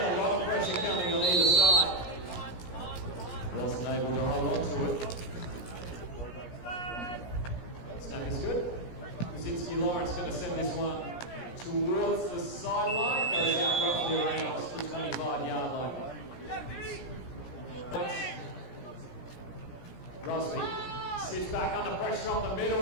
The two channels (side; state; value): right; late; 17 ms